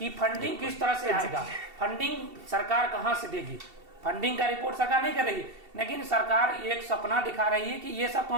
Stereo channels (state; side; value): late; left; 2.7 ms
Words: फंडिंग किस तरह से आएगा, फंडिंग सरकार कहाँ से देगी, फंडिंग का रिपोर्ट सरकार नहीं कर रही है, लेकिन सरकार एक सपना दिखा रही है कि ये सब